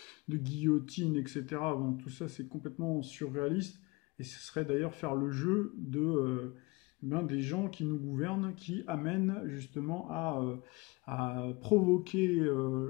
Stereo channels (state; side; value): quieter; right; 24.9 dB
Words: guillotine, etc. Bon, tout ça c'est complètement surréaliste et ce serait d'ailleurs faire le jeu des gens qui nous gouvernent, qui amènent justement à provoquer